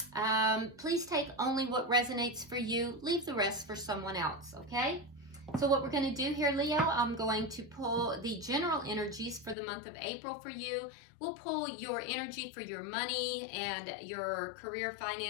Please take only what resonates for you. Leave the rest for someone else, okay? So what we're going to do here, Leo, I'm going to pull the general energies for the month of April for you. We'll pull your energy for your money and your career,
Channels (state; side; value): drops out; right; at 9.6 s